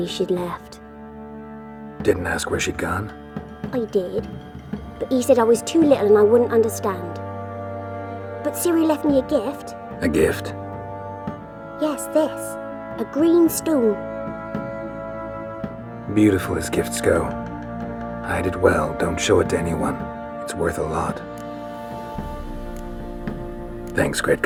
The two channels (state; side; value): identical; both; correlation 1.00